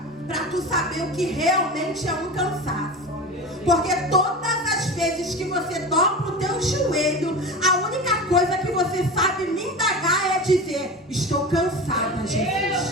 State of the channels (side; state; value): both; normal; correlation 0.29